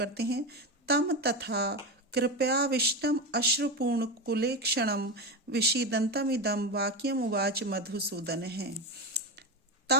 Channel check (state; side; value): normal; both; correlation 0.17